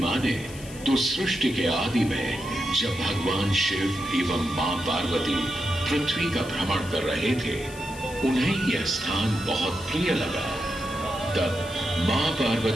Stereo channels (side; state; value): left; noise; hiss, 17 dB below the sound